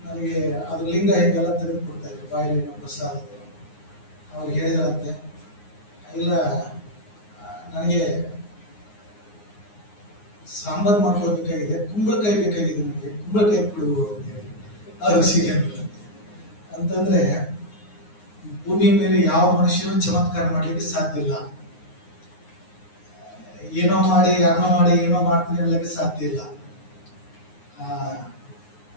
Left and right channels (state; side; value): late; right; 9.6 ms